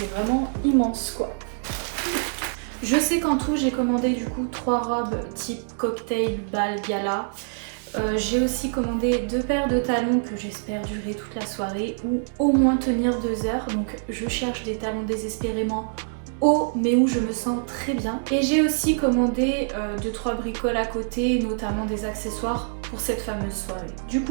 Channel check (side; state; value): left; silent; digital silence